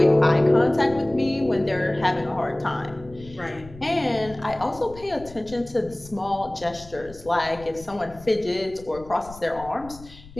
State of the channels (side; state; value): left; noise; rumble, 19 dB below the sound